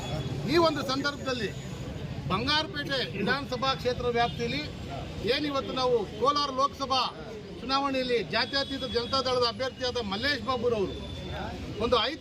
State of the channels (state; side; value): identical; both; correlation 1.00